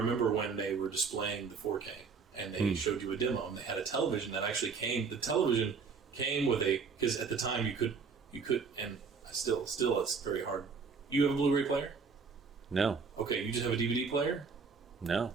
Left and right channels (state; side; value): quieter; left; 5.2 dB